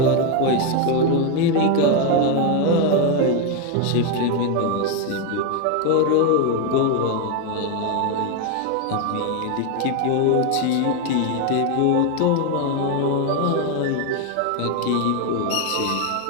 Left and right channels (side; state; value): both; different; correlation 0.01